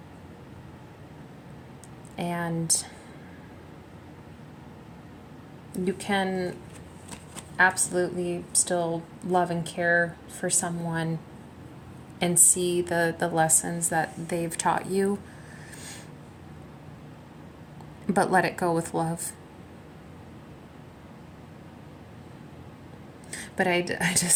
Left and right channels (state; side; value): identical; both; correlation 1.00